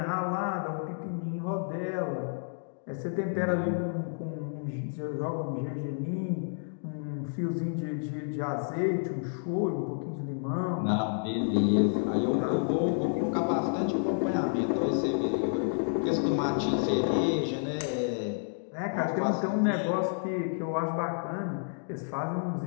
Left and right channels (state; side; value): silent; right; digital silence